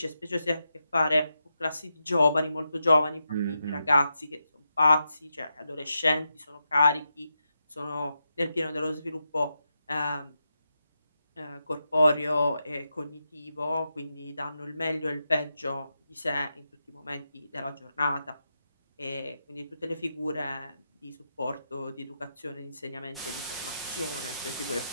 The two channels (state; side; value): inverted; both; correlation -0.86